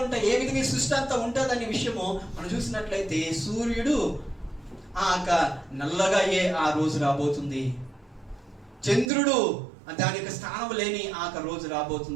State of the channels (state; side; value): drops out; left; at 9.1 s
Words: ఉంటాయి, ఏ విధంగా ఈ సృష్టి అంతా ఉంటుందనే విషయము మనం చూసినట్లయితే, సూర్యుడు నల్లగా ఆ రోజు రాబోతుంది, చంద్రుడు దాని యొక్క స్థానం లేని రోజు